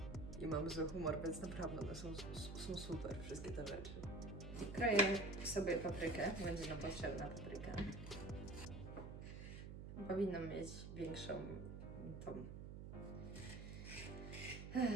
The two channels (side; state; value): right; noise; hum, 9 dB below the sound